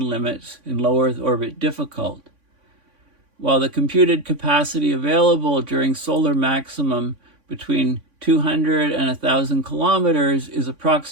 limits in low Earth orbit difficult. While the computed capacity available during solar maximum between 200 and 1,000 kilometers is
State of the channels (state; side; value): late; left; 3.5 ms